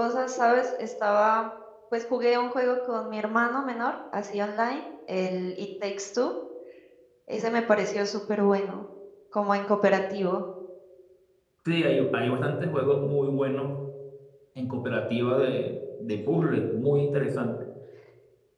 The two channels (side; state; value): both; identical; correlation 1.00